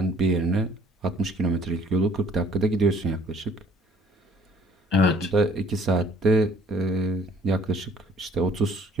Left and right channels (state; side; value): normal; both; correlation 0.58